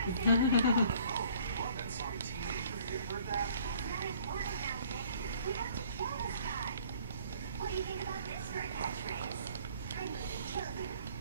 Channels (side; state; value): both; inverted; correlation -0.56